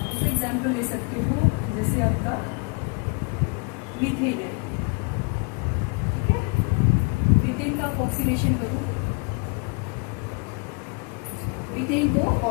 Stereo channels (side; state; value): right; quieter; 33.0 dB